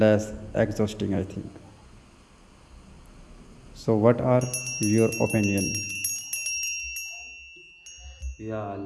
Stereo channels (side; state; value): both; identical; correlation 1.00